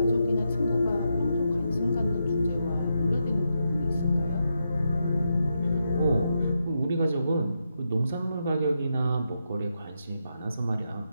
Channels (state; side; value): inverted; both; correlation -0.84